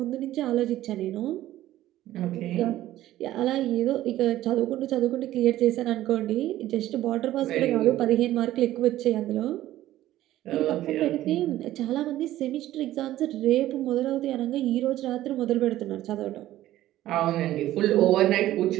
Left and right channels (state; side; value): quieter; left; 14.3 dB